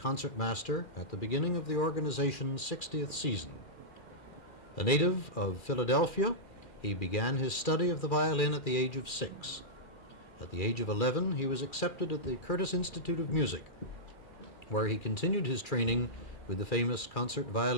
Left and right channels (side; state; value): right; late; 2.3 ms